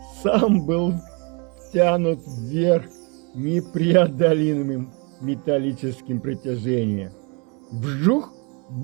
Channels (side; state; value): left; quieter; 32.5 dB